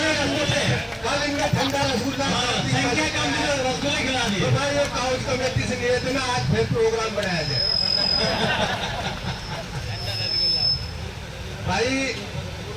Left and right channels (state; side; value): identical; both; correlation 1.00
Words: कल इनका ठंडा रसगुल्ला रसगुल्ले खिला दिए। भाई ये काउंसिल कमेटी से निवेदन है, आज फिर प्रोग्राम बनाया जाए। भाई